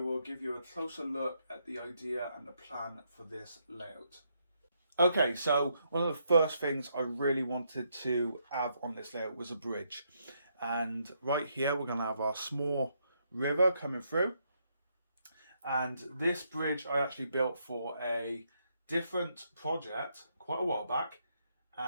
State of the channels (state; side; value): inverted; both; correlation -0.76